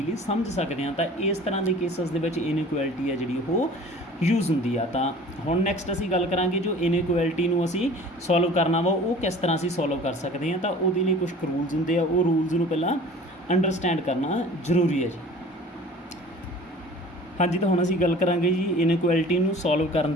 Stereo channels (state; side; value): normal; both; correlation 0.44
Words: ਸਮਝ ਸਕਦੇ ਹਾਂ। ਤਾਂ ਇਸ ਤਰ੍ਹਾਂ ਦੇ ਕੇਸਿਸ ਦੇ ਵਿੱਚ ਇਨਇਕੁਐਲਿਟੀ ਹੈ ਜਿਹੜੀ ਉਹ ਯੂਜ਼ ਹੁੰਦੀ ਆ। ਤਾਂ ਹੁਣ ਨੈਕਸਟ ਅਸੀਂ ਗੱਲ ਕਰਾਂਗੇ ਜੋ ਇਨਇਕੁਐਲਿਟੀ ਨੂੰ ਅਸੀਂ ਸੋਲਵ ਕਰਨਾ ਵਾ ਉਹ ਕਿਸ ਤਰ੍ਹਾਂ ਅਸੀਂ ਸੋਲਵ ਕਰ ਸਕਦੇ ਹਾਂ। ਤਾਂ ਉਹਦੇ ਲਈ ਕੁਝ ਰੂਲਸ ਹੁੰਦੇ ਆ, ਉਹ ਰੂਲਸ ਨੂੰ ਪਹਿਲਾਂ ਅੰਡਰਸਟੈਂਡ ਕਰਨਾ ਜ਼ਰੂਰੀ ਹੈ ਜੀ। ਹਾਂਜੀ, ਤਾਂ ਹੁਣ ਅਸੀਂ ਗੱਲ ਕਰਾਂਗੇ ਜੀ ਇਨਇਕੁਐਲਿਟੀ ਨੂੰ ਸੋਲਵ ਕਰਨ